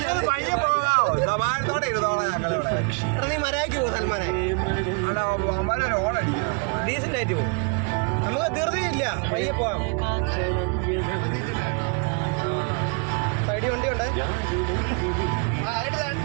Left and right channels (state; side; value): quieter; left; 35.2 dB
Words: നീ മരയ്ക്ക് പോ സൽമാനെ. ഡീസന്റ് ആയിട്ട് പോകും. നമുക്ക് ധൃതിയില്ല, പയ്യെ പോവാം. സൈഡിൽ വണ്ടിയുണ്ട്.